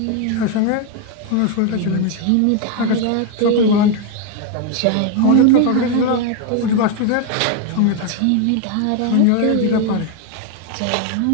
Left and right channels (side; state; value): both; different; correlation 0.01